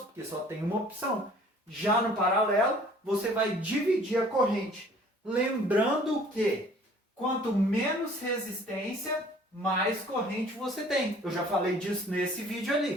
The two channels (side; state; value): both; normal; correlation 0.53